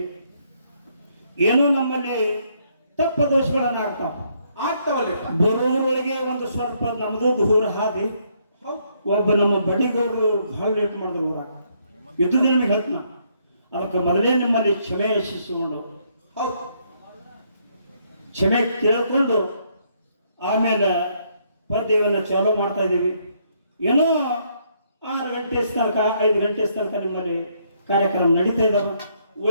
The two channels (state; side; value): inverted; both; correlation -0.71